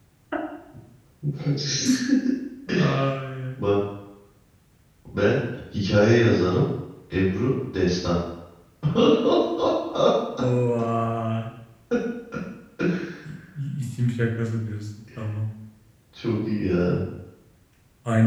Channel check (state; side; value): identical; both; correlation 1.00